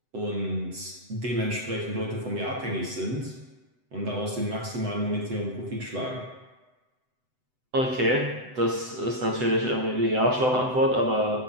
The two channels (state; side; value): late; left; 7.9 ms